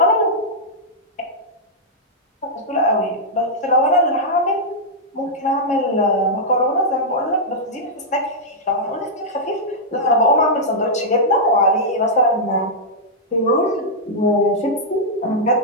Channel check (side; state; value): both; normal; correlation -0.07